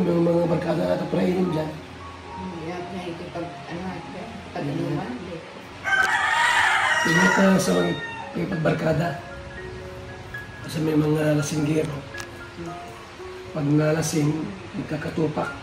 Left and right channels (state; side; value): identical; both; correlation 1.00